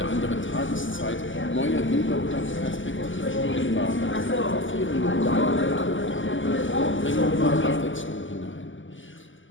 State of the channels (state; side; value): late; right; 0.56 ms